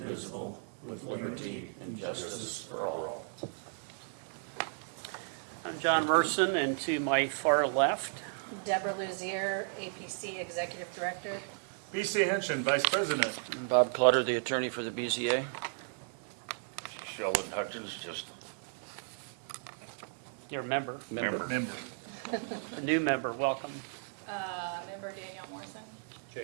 with liberty and justice for all. I'm John Merson, and to my far left, Deborah Luzier, APC Executive Director. BC Henshin, Vice President. Bob Clutter, the attorney for the BZA. Sheldon Hutchins, just your member, Member. a new member. Welcome. Member Danielle Morrison.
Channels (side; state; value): left; silent; 55 dB below the other